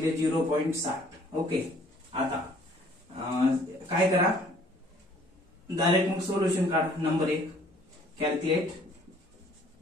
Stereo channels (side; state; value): both; normal; correlation 0.58